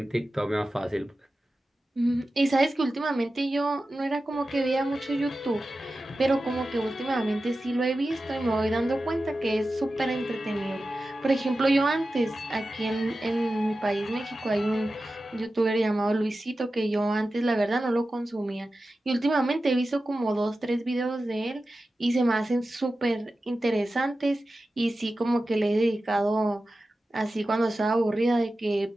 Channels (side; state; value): both; normal; correlation 0.93